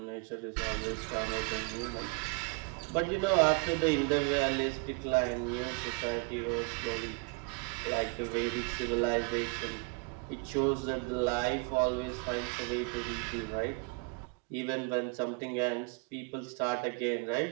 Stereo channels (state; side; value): quieter; left; 31.3 dB